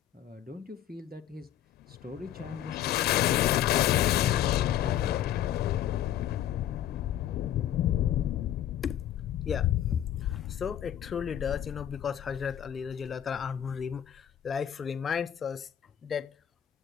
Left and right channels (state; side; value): quieter; right; 11.0 dB